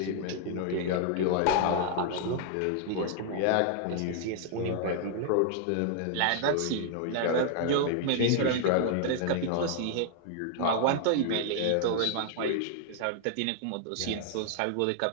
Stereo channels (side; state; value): both; different; correlation -0.01